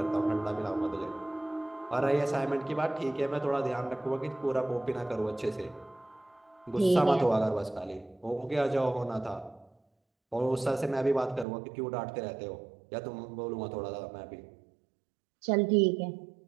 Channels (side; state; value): left; drops out; at 11.5 s